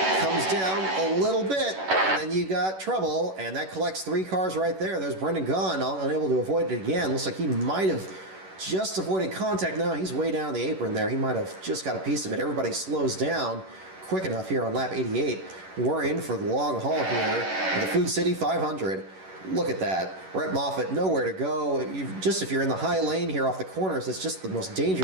Comes down a little bit, and then you got trouble. And that collects 3 cars right there. There's Brendan Gaughan, unable to avoid it again. Looks like he might have just avoided contact. No, he's way down the apron there. He might have just got a piece of it. Everybody slows down quick enough here on lap 88. We're in for the long haul here in the Food City 500. Look at that. Brett Moffitt, nowhere to go. If you're in the high lane here off the corners, it's just the most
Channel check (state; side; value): late; left; 11 ms